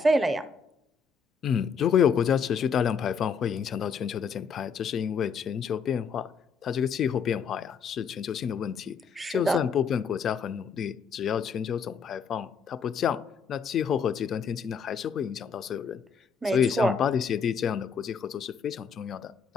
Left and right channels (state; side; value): quieter; right; 5.7 dB